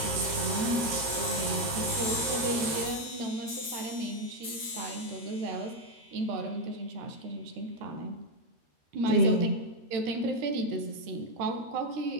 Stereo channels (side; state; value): left; late; 13 ms